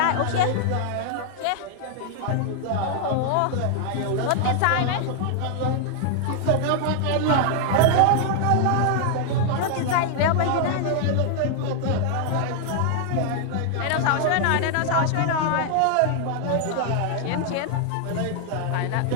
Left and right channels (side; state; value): both; different; correlation 0.00